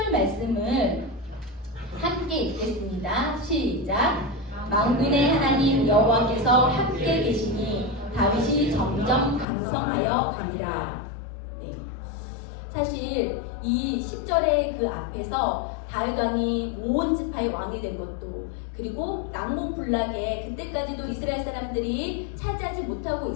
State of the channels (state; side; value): drops out; right; at 9.5 s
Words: 말씀을 함께 읽겠습니다. 시작. 만군의 하나님 여호와께서 함께 계시니 다윗이 점점 강성하여 가니라. 네. 사실 이 10절의 그 앞에서 다윗 왕이 온 지파의 왕이 된 것도, 그리고 난공불락에 그때까지도 이스라엘 사람들이 차지하지 못하고